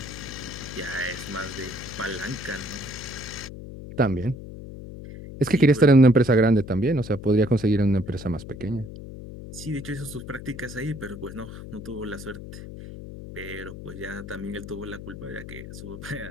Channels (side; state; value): left; noise; hum, 12 dB below the sound